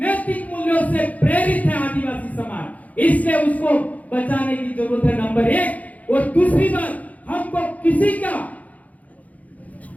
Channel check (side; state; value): right; late; 0.073 ms